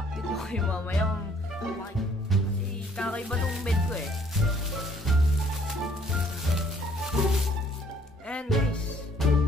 ko kayo mamaya kung kasi kakaiba tong bed ko eh. And guys,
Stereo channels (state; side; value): normal; both; correlation 0.61